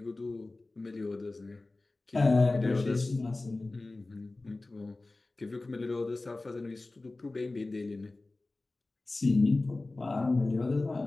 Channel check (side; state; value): right; quieter; 3.1 dB